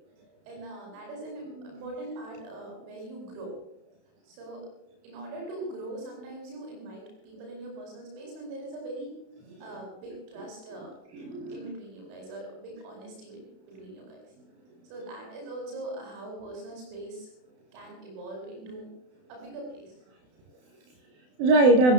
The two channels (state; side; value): late; left; 32 ms